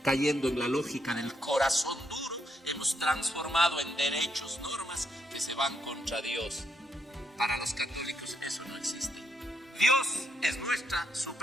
cayendo en la lógica del corazón duro, hemos transformado en derechos, normas que se van contra Dios. Para los católicos eso no existe. Dios es nuestra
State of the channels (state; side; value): normal; both; correlation 0.78